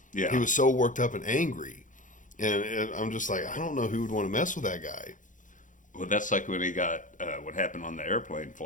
Yeah. He was so worked up and angry. And I'm just like, I don't know who would want to mess with that guy. Well, that's like when he got what happened on the airplane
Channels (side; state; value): right; late; 0.37 ms